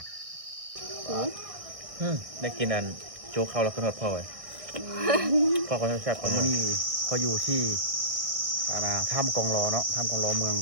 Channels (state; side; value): late; left; 1.6 ms